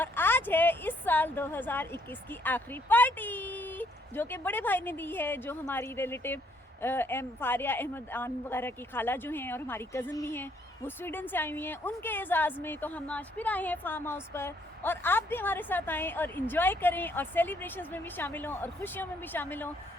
आज है इस साल 2021 की आखिरी पार्टी जो कि बड़े भाई ने दी है, जो हमारी रिलेटिव फारिया अहमद आन वगैरह की खाला जो हैं और हमारी कज़न भी हैं, वो स्वीडन से आई हुई हैं। उनके एजाज़ में तो हम आज फिर आए हैं फार्म हाउस पर, और आप भी हमारे साथ आएँ और इन्जॉय करें और सेलिब्रेशंस में भी शामिल हों और खुशियों में भी शामिल हों।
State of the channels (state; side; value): normal; both; correlation 0.68